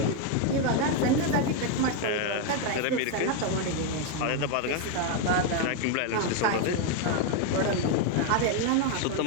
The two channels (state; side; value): different; both; correlation 0.01